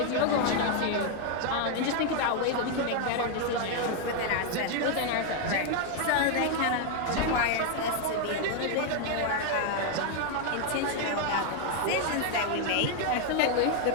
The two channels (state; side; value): different; both; correlation 0.00